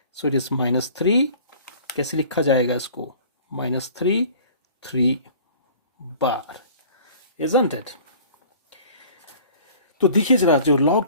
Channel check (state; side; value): inverted; both; correlation -0.47